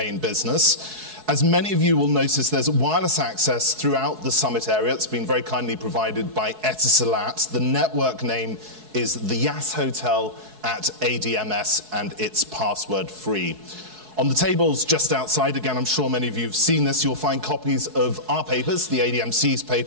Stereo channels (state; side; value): late; left; 4.6 ms